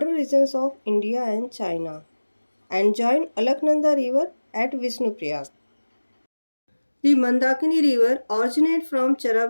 regions of India and China, and joins Alaknanda River at Vishnuprayag. The Mandakini River originates from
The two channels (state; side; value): inverted; both; correlation -1.00